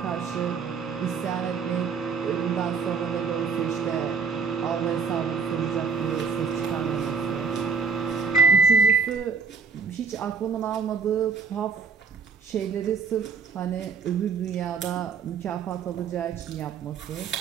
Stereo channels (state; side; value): quieter; left; 5.5 dB